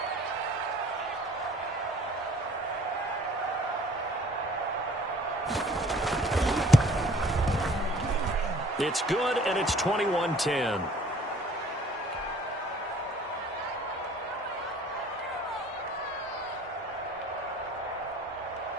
It's good, and it's 21-10.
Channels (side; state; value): both; normal; correlation 0.53